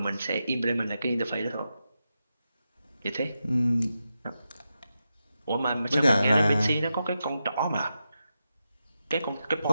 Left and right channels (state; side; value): inverted; both; correlation -0.88